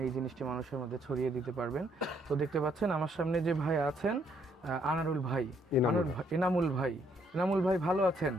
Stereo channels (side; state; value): both; normal; correlation 0.70